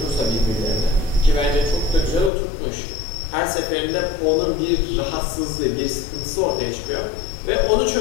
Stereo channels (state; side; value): drops out; right; at 2.3 s